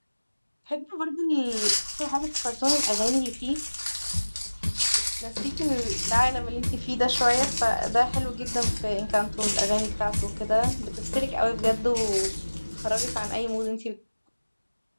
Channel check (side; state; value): both; inverted; correlation -1.00